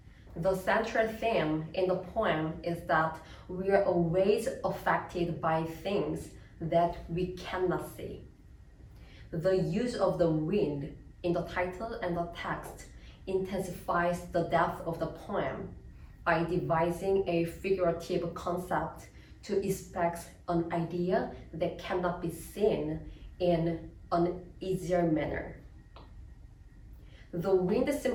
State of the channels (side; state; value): both; identical; correlation 1.00